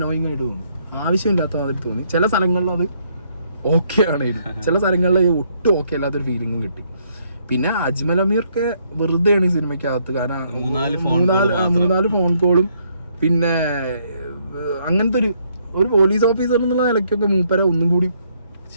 ആയിട്ട് തോന്നി, ആവശ്യമില്ലാത്ത മാതിരി തോന്നി. ചില സ്ഥലങ്ങളിൽ അത് ഓക്കെ ആണെങ്കിലും ചില സ്ഥലങ്ങളിൽ ഒട്ടും ഓക്കെ അല്ലാത്തൊരു ഫീലിംഗും കിട്ടി. പിന്നെ അജ്മൽ അമീർക്ക് വെറുതെയാണ് ഈ സിനിമയ്ക്കകത്ത്, കാരണം മൂന്നാല് ഫോൺ കോളും പിന്നെ അങ്ങനത്തെ ഒരു പോലീസ് ഓഫീസർ എന്നുള്ള നിലയ്ക്കൊക്കെ മൂപ്പരെ ഒന്നും കൂടി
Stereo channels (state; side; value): inverted; both; correlation -0.70